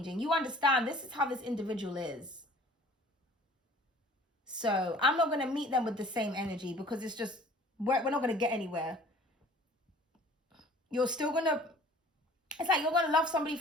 You understand this is how this individual is. So I'm not going to meet them with the same energy because it's just, we're not going to get anywhere. You're still going to, it's like you're going to love somebody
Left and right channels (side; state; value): both; normal; correlation 0.49